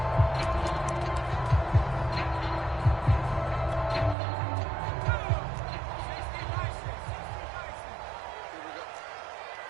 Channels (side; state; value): left; drops out; at 4.2 s